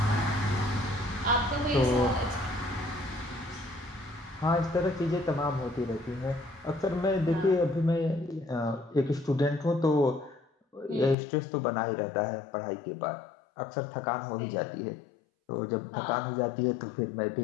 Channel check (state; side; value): drops out; right; at 11.2 s